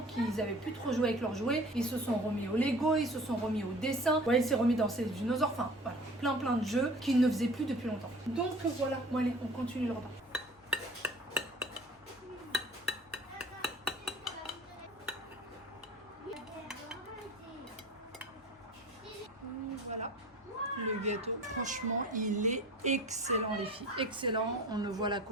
qu'ils n'avaient plus trop joué avec leurs jouets. Ils se sont remis au Lego, ils se sont remis au dessin. Ouais, il s'est remis dans ses dinosaures. Enfin, voilà, plein de jeux qu'ils ne faisaient plus depuis longtemps. Donc voilà, bon allez, on continue le repas. Voilà. Le gâteau, franchement, il est excellent les filles, excellent, on ne voit la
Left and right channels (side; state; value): both; normal; correlation 0.43